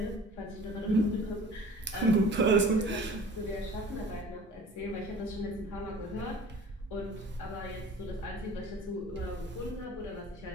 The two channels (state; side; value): normal; both; correlation 0.45